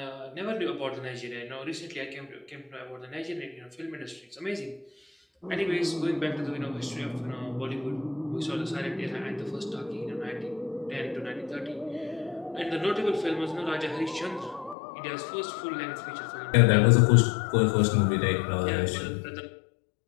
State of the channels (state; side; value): drops out; right; at 14.8 s